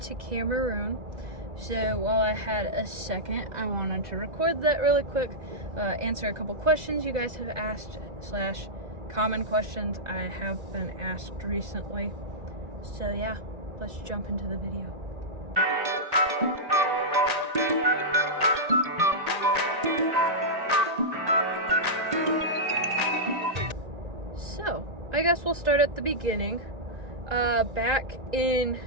to Cameroon. So while I had a second, I wanted to record that really quick, answer a couple questions you guys have asked / common questions I have been asked recently. So yeah, let's jump into the video. So, I guess we'll start at the beginning. Back in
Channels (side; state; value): left; late; 1.8 ms